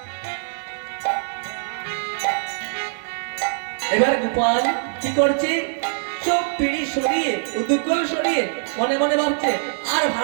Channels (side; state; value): left; silent; digital silence